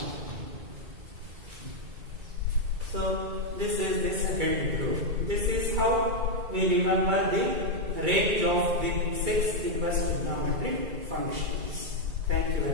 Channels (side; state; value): left; late; 2.3 ms